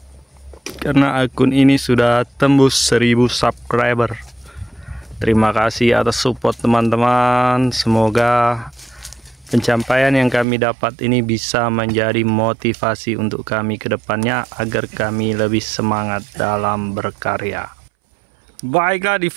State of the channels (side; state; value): left; drops out; at 10.5 s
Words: karena akun ini sudah tembus 1000 subscriber. Terima kasih atas support teman-teman. Semoga pencapaian yang kami dapat ini bisa menjadi motivasi untuk kami ke depannya agar kami lebih semangat dalam berkarya. Baiklah, di